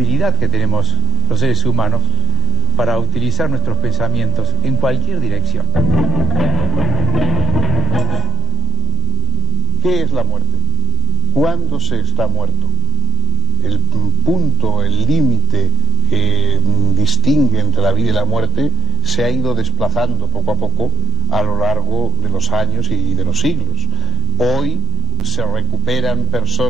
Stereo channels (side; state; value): both; normal; correlation 0.75